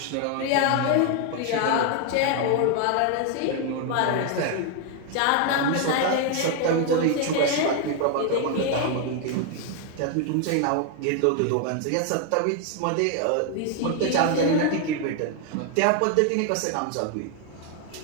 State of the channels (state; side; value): different; both; correlation 0.01